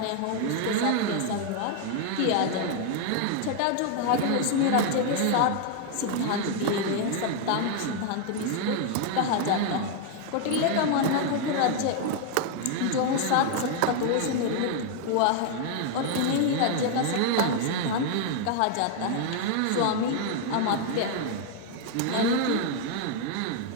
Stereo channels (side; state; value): both; different; correlation 0.00